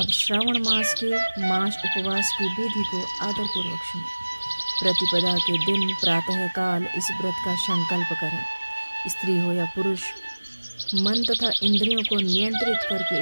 श्रावण मास के मास उपवास की विधि को आदरपूर्वक सुनो। प्रतिपदा के दिन प्रातः काल इस व्रत का संकल्प करें। स्त्री हो या पुरुष, मन तथा इंद्रियों को नियंत्रित करके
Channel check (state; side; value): inverted; both; correlation -1.00